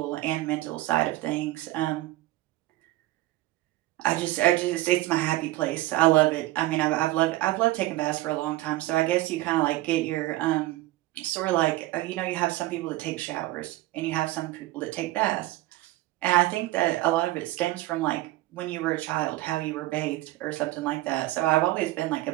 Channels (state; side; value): quieter; left; 17.3 dB